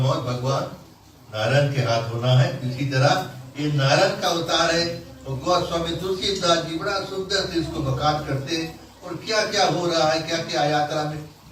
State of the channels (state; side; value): identical; both; correlation 1.00